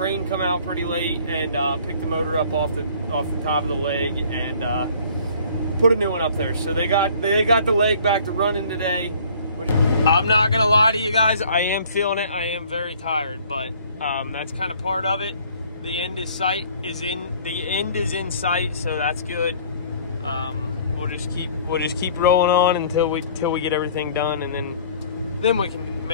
come out pretty late and pick the motor up off the top of the leg and put a new one up there. So they got the leg back to running today. Which, I'm not gonna lie to you guys, I am feeling it. I am very tired, but that's kind of part of it. The end is in sight, so that's good. We'll just keep rolling on until we get everything done, and then we can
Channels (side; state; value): both; inverted; correlation -0.53